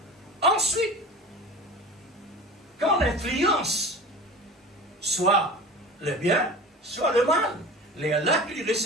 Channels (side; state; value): both; normal; correlation 0.35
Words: Ensuite, quand l'influence, soit le bien, soit le mal, les là qu'il